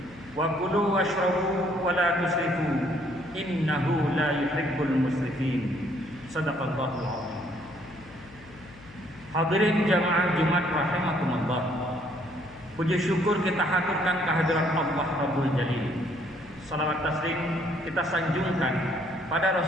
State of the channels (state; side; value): noise; left; hum, 21 dB below the sound